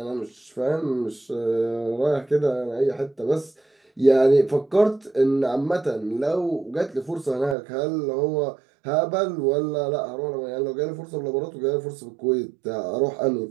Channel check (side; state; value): left; drops out; at 7.6 s